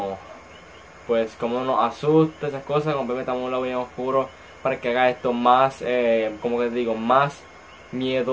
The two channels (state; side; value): identical; both; correlation 1.00